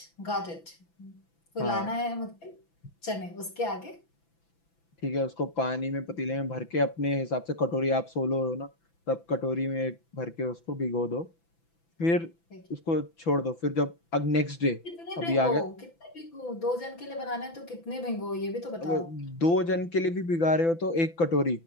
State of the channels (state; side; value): late; right; 6.0 ms